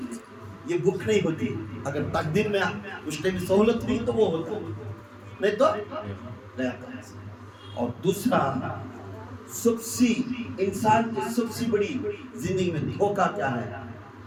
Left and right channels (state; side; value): identical; both; correlation 1.00